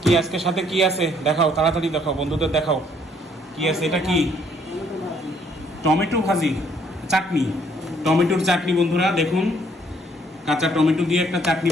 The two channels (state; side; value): normal; both; correlation 0.65